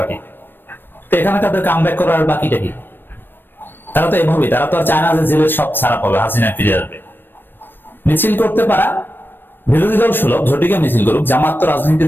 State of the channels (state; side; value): late; right; 0.096 ms